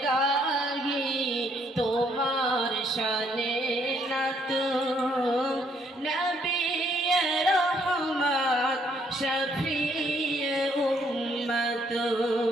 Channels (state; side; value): normal; both; correlation 0.69